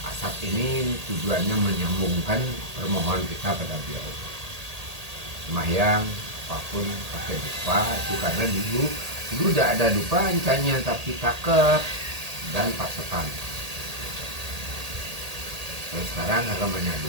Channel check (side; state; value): left; late; 1.8 ms